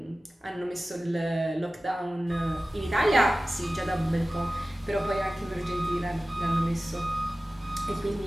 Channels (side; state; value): both; normal; correlation 0.96